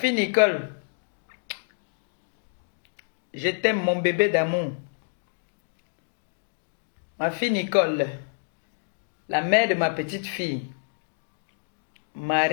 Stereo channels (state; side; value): silent; right; 60 dB below the other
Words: Nicole, je t'aime mon bébé d'amour. Ma fille Nicole, la mère de ma petite fille.